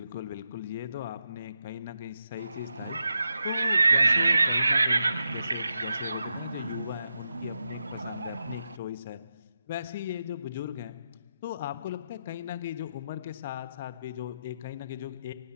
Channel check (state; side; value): inverted; both; correlation -0.86